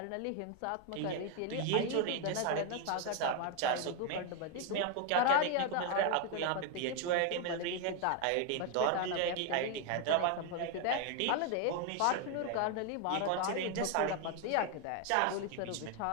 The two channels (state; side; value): different; both; correlation 0.01